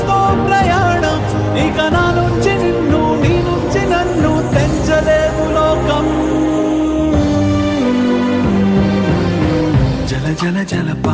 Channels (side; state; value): both; identical; correlation 1.00